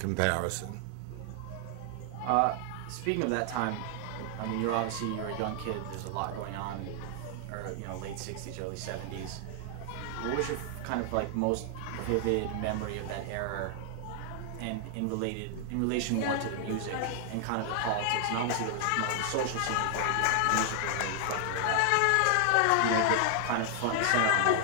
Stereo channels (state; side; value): different; both; correlation 0.00